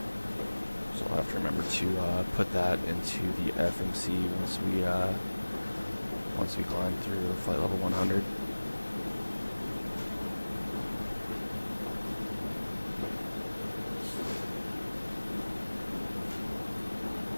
I'll have to remember to put that into the FMC once we climb through flight level 100.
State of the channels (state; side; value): inverted; both; correlation -1.00